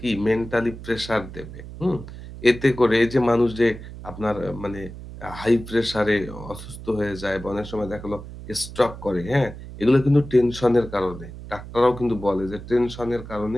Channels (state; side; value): noise; right; hum, 13 dB below the sound